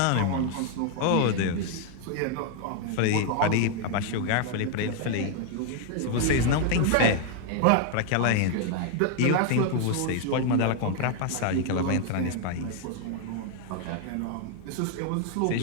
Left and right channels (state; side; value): different; both; correlation 0.00